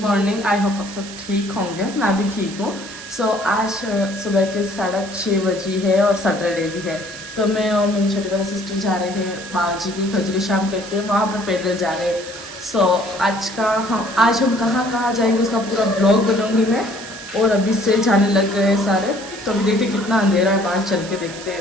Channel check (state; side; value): noise; right; hiss, 14 dB below the sound